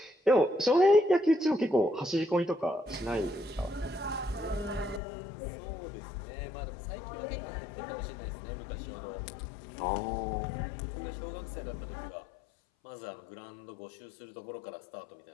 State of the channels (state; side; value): drops out; right; at 5.0 s